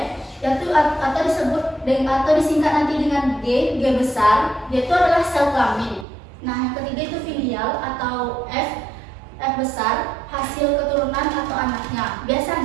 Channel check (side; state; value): left; drops out; at 6.1 s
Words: yaitu atau disebut atau disingkat nanti dengan G besar, dia itu adalah sel kelamin. Nah, yang ketiga itu filial atau F besar, hasil keturunan atau anaknya.